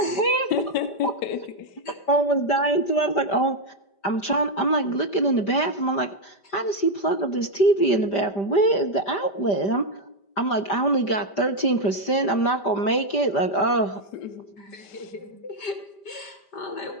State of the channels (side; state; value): right; late; 5.1 ms